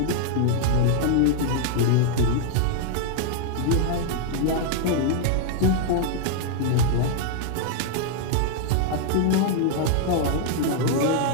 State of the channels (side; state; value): both; different; correlation 0.00